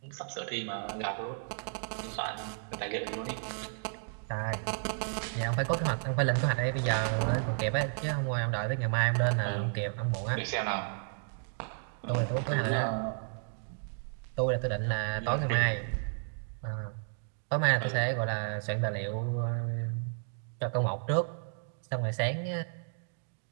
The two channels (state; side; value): silent; left; digital silence